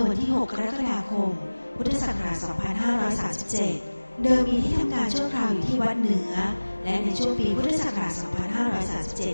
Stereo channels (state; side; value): inverted; both; correlation -1.00